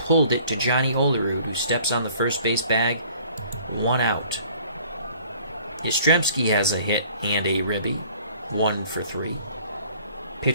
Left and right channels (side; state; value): both; inverted; correlation -0.54